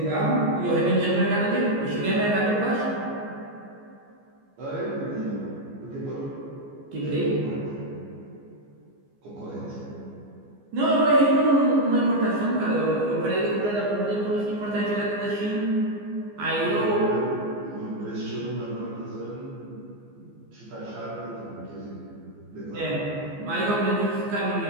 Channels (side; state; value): left; late; 14 ms